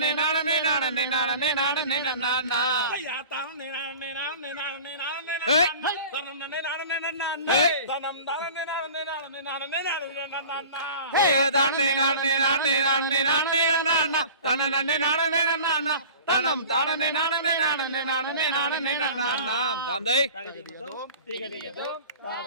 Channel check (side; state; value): both; inverted; correlation -0.40